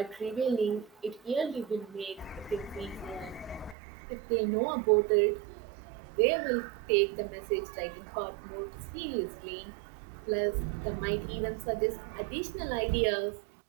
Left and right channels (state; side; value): drops out; left; at 3.8 s